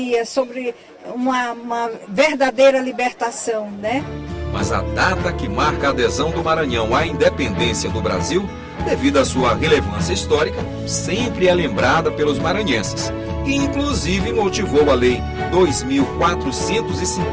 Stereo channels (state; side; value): identical; both; correlation 1.00